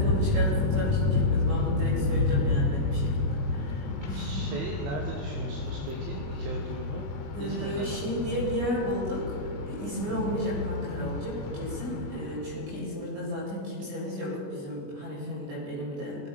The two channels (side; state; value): left; late; 21 ms